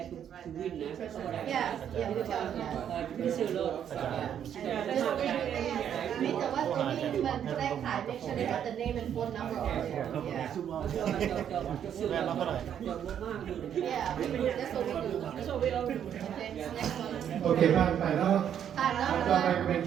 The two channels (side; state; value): left; quieter; 9.3 dB